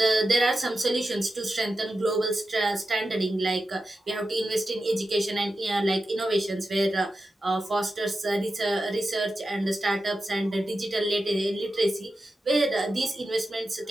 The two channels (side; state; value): both; normal; correlation 0.91